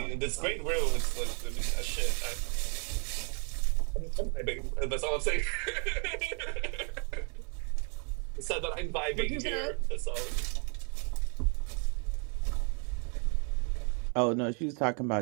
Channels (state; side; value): quieter; left; 38.7 dB